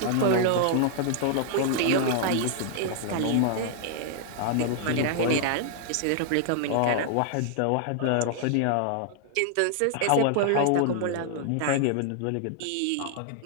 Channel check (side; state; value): both; different; correlation 0.00